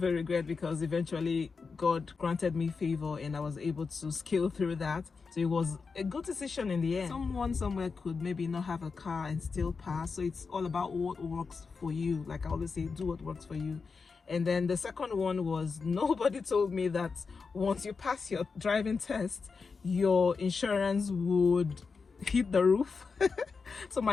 a regret, because eventually God granted me favor and I was able to scale through that. So it was a good decision in the end. Someone somewhere could maybe not have a car and still pass. So it's all about what works for you. Like I always say, do what works for you. And then the second one was, nobody told me that once you pass your driving test, your insurance would hit the roof. So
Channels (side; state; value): right; quieter; 4.9 dB